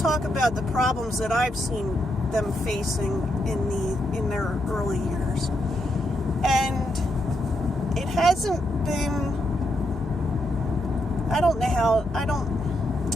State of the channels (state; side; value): normal; both; correlation 0.80